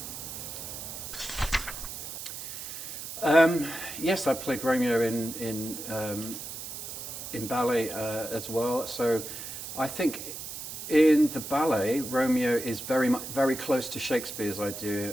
Yes, I played Romeo in ballet as well. So I think in the ballet, Romeo is very close to Shakespeare's idea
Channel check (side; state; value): right; noise; hiss, 8 dB below the sound